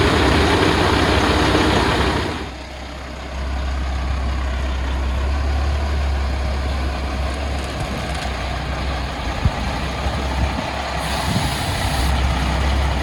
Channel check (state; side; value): identical; both; correlation 1.00